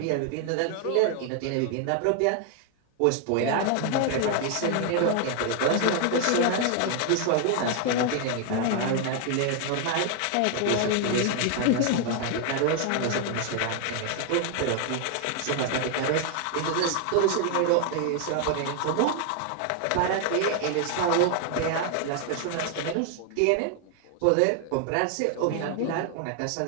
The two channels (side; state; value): both; different; correlation 0.00